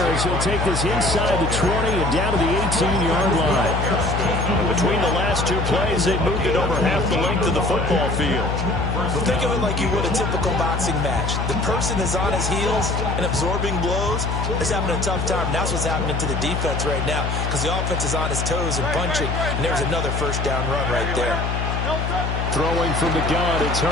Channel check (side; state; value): left; noise; hum, 1 dB below the sound